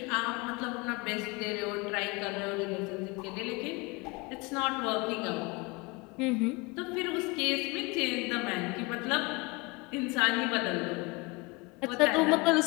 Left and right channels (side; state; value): right; quieter; 26.3 dB